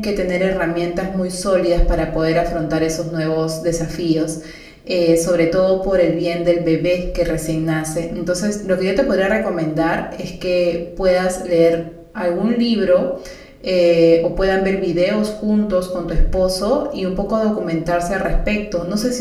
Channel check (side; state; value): both; identical; correlation 1.00